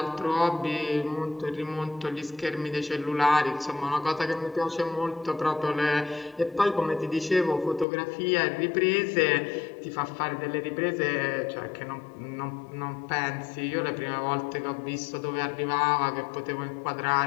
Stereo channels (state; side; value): drops out; right; at 7.9 s